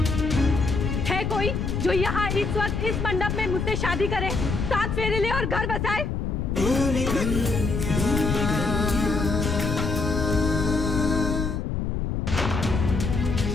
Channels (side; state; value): left; noise; rumble, 2 dB below the sound